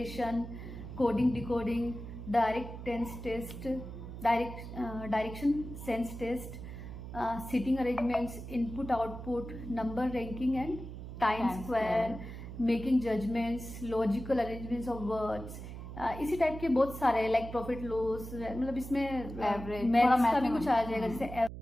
coding decoding, direction sense test, sitting arrangements, input output, number ranking and time square, making judgments, logical arrangements of words, इसी type के बहुत सारे हैं, like profit loss, मतलब इसमें average, maths का भी कुछ आ जाएगा, जैसे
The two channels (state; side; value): noise; right; hum, 10 dB below the sound